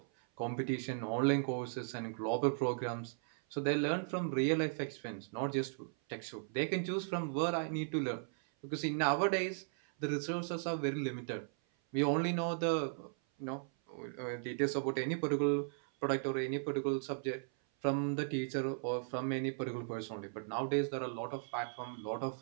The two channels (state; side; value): silent; left; 53 dB below the other